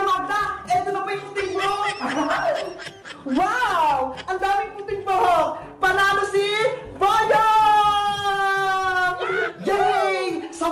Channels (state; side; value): identical; both; correlation 1.00